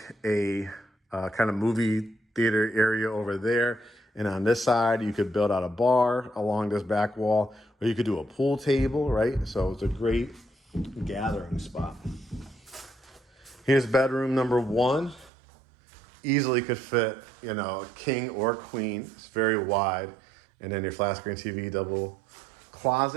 a kind of movie theater area over there. And on this side, you could build out a bar along this back wall, or you could do a pool table, right? So it's a great gathering spot. Here's bedroom number 1. Easily could fit, king or queen. It's very wide. And then your flat screen TV, double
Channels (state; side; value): drops out; left; at 15.3 s